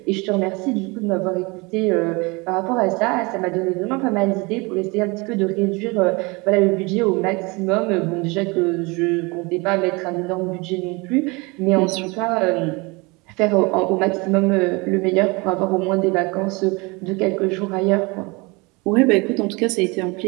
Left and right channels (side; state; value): left; quieter; 26.5 dB